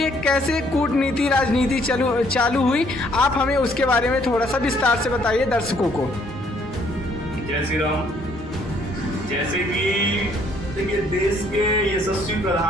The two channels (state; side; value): normal; both; correlation 0.65